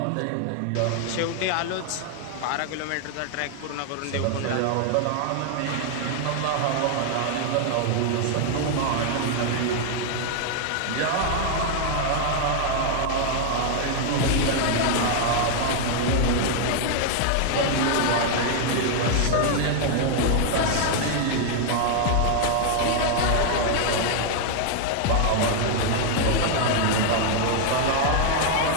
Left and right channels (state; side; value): different; both; correlation 0.00